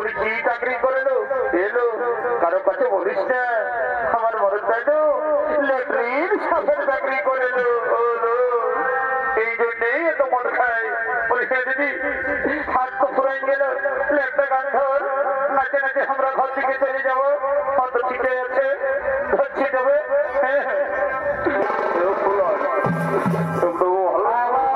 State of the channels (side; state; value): both; identical; correlation 1.00